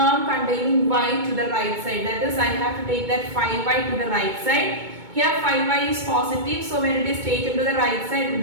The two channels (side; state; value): left; late; 2.2 ms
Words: containing y to the right side. That is, I have to take that 5y to the right side. Here 5y is positive, so when it is taken to the right side, it